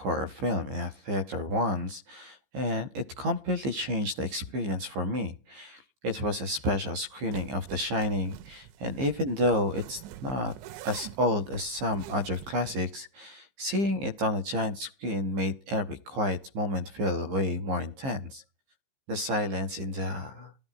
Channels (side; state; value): left; late; 15 ms